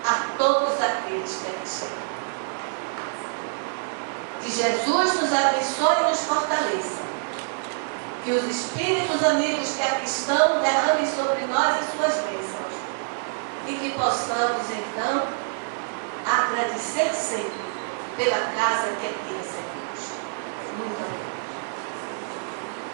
a todos aqueles que aqui chegam. Que Jesus nos abençoe e nos fortaleça. Que os espíritos amigos que aqui estão derramem sobre nós as suas bênçãos. E que possamos, então, agradecer sempre pela casa que aqui recebemos. Muito obrigada.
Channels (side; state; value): left; silent; 61 dB below the other